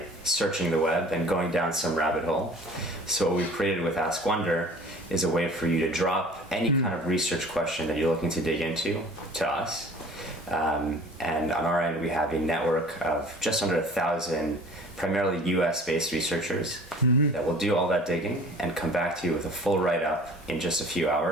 searching the web and going down some rabbit hole. So what we've created with Askwonder is a way for you to drop any kind of research question that you're looking to dig into to us. And on our end, we have a network of just under 1,000 primarily US-based researchers that will do all that digging and come back to you with a full write-up in just a few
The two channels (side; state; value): both; normal; correlation 0.46